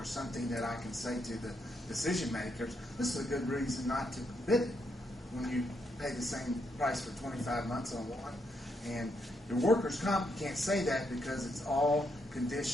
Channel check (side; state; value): both; normal; correlation 0.79